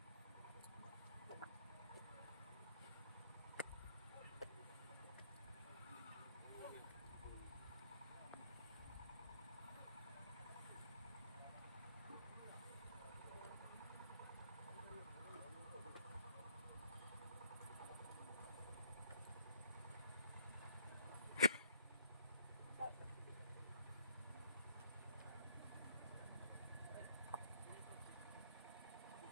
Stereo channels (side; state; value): both; inverted; correlation -0.63